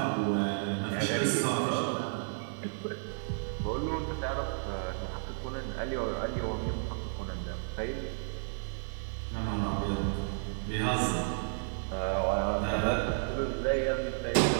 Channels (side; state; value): left; silent; digital silence